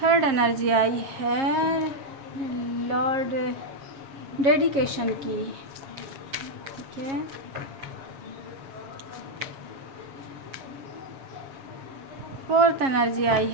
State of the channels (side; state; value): left; late; 7.3 ms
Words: Third energy आई है लॉर्ड डेडिकेशन की, ठीक है। फोर्थ एनर्जी आई